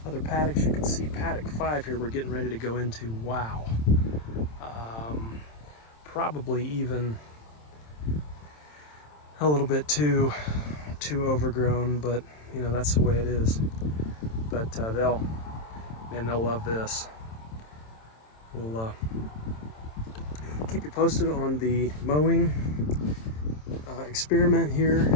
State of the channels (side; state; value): right; late; 27 ms